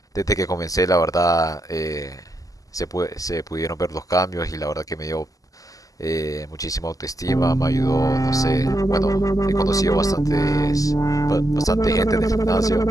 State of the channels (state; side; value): late; right; 0.17 ms